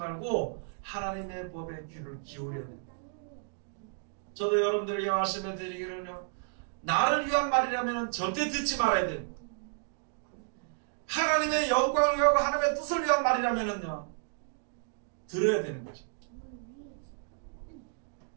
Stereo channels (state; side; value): silent; left; digital silence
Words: 하나님의 법에 귀를 기울여야 됩니다. 저도 여러분들에게 말씀해 드리기는요. 나를 위한 말이라면 절대 듣지 말아야 됩니다. 하나님의 영광을 위하고 하나님의 뜻을 위한 말이라면요. 들어야 되는 거죠.